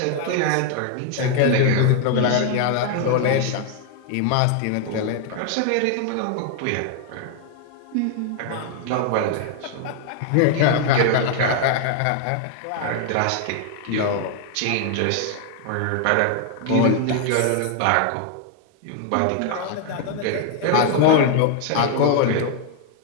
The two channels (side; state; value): both; different; correlation 0.00